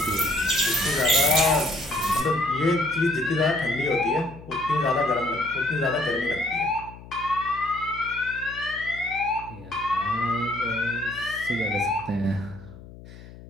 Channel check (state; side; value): noise; left; hum, 17 dB below the sound